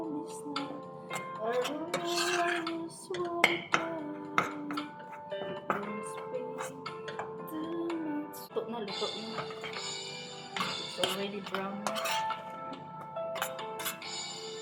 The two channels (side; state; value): both; identical; correlation 1.00